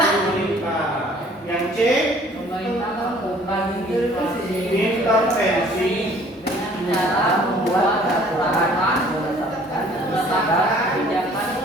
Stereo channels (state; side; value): normal; both; correlation 0.55